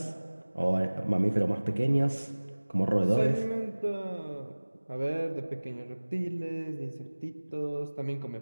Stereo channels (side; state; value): both; inverted; correlation -1.00